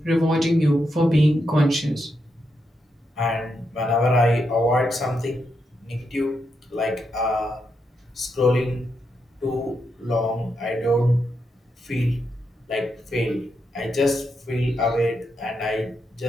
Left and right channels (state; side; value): normal; both; correlation 0.83